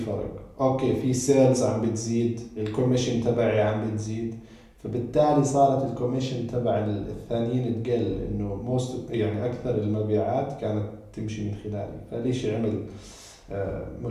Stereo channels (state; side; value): identical; both; correlation 1.00